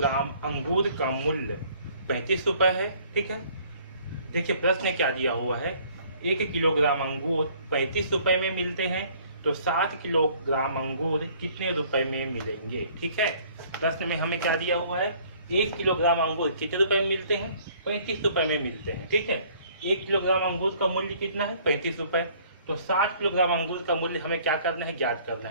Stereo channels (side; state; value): both; inverted; correlation -0.57